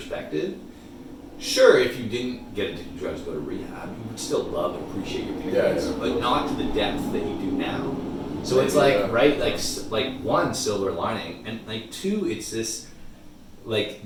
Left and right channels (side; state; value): both; identical; correlation 1.00